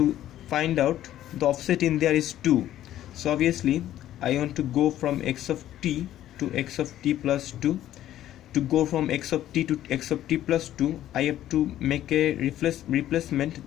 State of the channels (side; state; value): right; quieter; 12.7 dB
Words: find out, the offset in there is 2. So obviously I want to go from x of t to x of t plus 2. To go from x of t to x of t plus 2, I have to make a